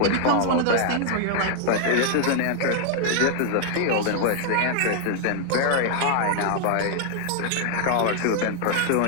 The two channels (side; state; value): both; different; correlation 0.00